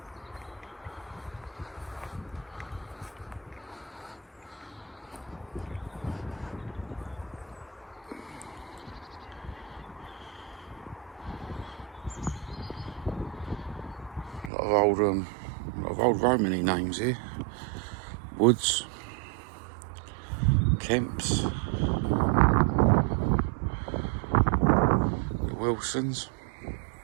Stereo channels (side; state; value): left; drops out; at 14.5 s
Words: A lot of old Romany names here. Woods, Kemps, the Wilsons.